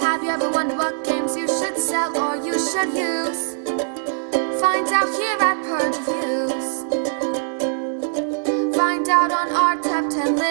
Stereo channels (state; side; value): silent; left; digital silence